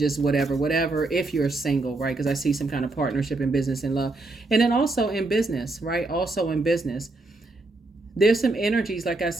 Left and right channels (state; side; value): quieter; left; 3.1 dB